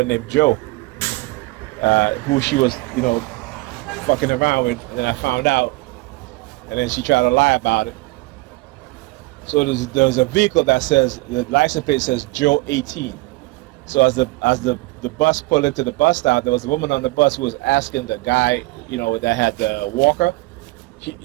named Joe, who she was, fucking around with, and then I found out, and then she tried to lie about it. So there's a vehicle that says, the license plate says Joe 18. So as the bus pulled into the bus stop, there was a woman on the bus who was asking the guy, that had the walker.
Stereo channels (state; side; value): quieter; left; 22.5 dB